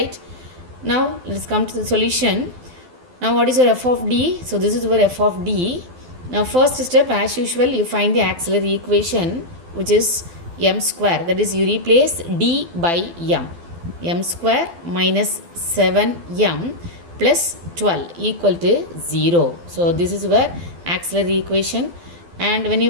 Now let's come to the solution. Now what is your f of d? So this is your f of d. Now first step, as usual, you find the auxiliary equation, which is m square. That is, you replace d by m square minus 7m plus 12 equal to 0. So this is your auxiliary equation. And when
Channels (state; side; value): late; left; 12 ms